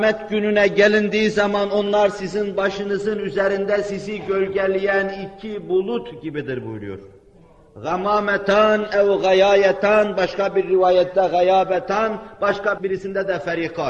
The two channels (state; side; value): identical; both; correlation 1.00